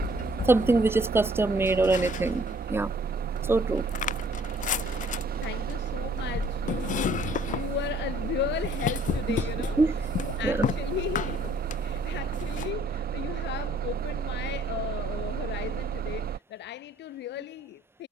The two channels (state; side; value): normal; both; correlation 0.60